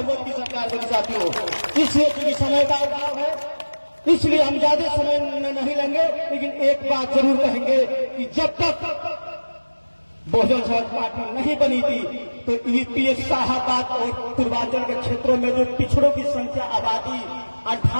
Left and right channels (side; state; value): both; inverted; correlation -1.00